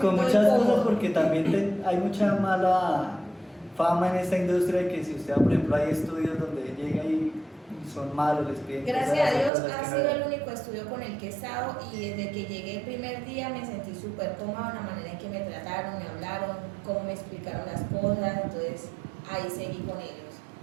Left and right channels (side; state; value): left; drops out; at 9.5 s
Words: con muchas incómodo. cosas porque también hay mucha mala fama en esta industria de que si usted, por ejemplo, hay estudios donde llega y son malos, les piden Gracias cosas, a Dios cosas ha que no sido deben. el único estudio con el que he estado y desde que llegué el primer día me sentí súper cómoda en la manera en que me trataron, me hablaron, cómo me explicaron las cosas, entonces ahí seguí con ellos